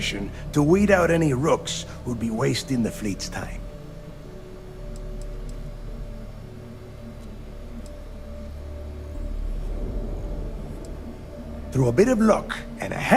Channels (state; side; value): identical; both; correlation 1.00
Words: to weed out any rooks who'd be wasting the fleet's time? Through a bit of luck and a